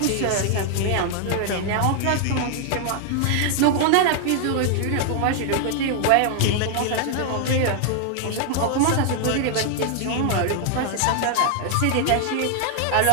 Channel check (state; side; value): different; both; correlation 0.00